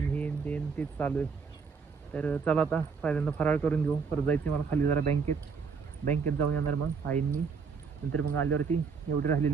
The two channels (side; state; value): left; quieter; 5.5 dB